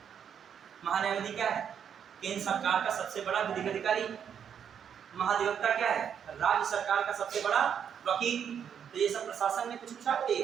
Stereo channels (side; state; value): left; quieter; 8.1 dB